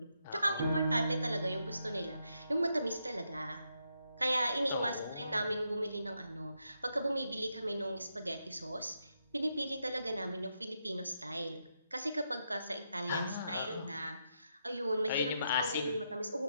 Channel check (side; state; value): both; inverted; correlation -0.81